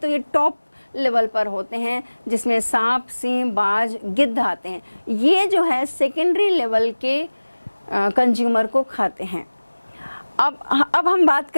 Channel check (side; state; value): both; inverted; correlation -1.00